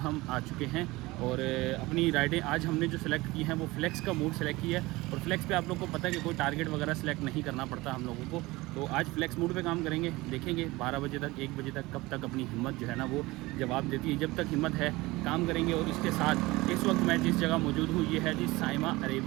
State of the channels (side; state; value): left; quieter; 20.8 dB